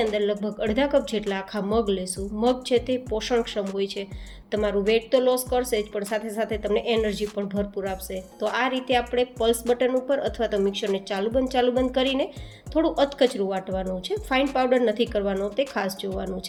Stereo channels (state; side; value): identical; both; correlation 1.00